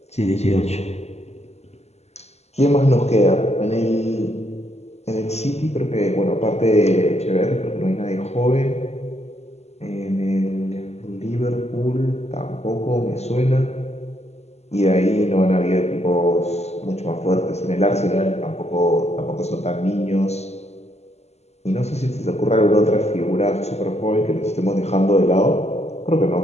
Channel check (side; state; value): right; late; 0.31 ms